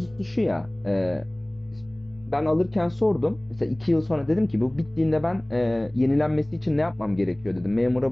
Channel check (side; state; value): right; noise; rumble, 27 dB below the sound